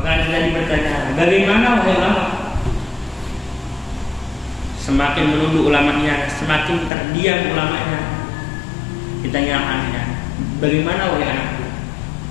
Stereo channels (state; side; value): drops out; right; at 6.9 s